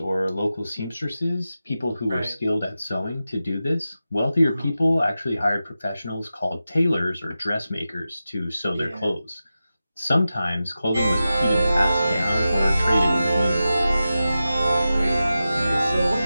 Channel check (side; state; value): both; inverted; correlation -0.93